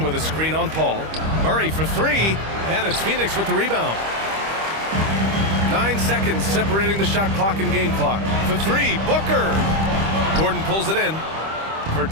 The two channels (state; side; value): late; left; 25 ms